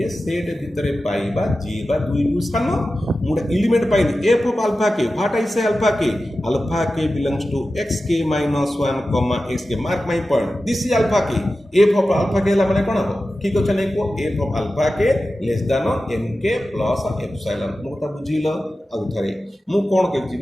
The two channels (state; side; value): normal; both; correlation 0.94